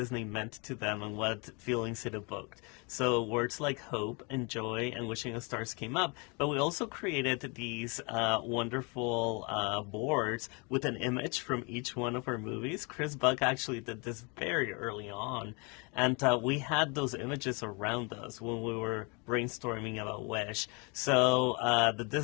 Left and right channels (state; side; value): quieter; right; 31.2 dB